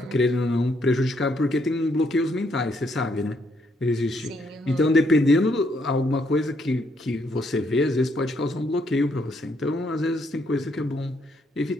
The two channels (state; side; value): normal; both; correlation 0.73